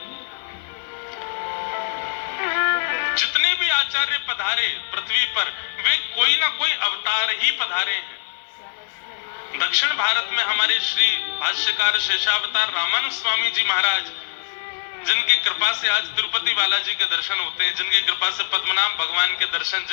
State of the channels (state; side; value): silent; right; digital silence